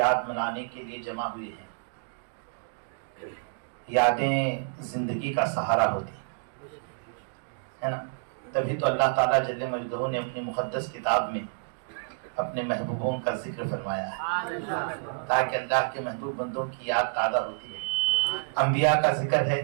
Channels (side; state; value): left; silent; digital silence